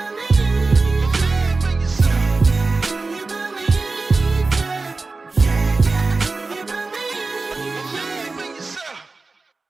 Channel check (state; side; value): quieter; left; 3.8 dB